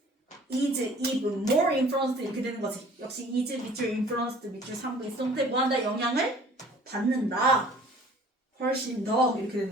is even more influenced 이렇게 되는 거지. 역시 is 밑줄 influenced 밑줄 3부 이성태 뭐한다? 영향을 받는다. 훨씬 더 이렇게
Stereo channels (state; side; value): normal; both; correlation 0.51